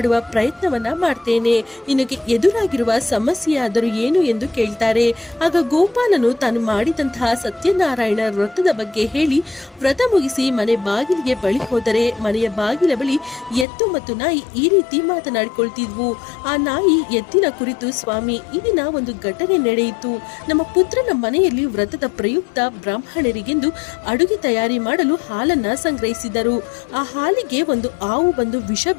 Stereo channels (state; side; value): drops out; right; at 13.7 s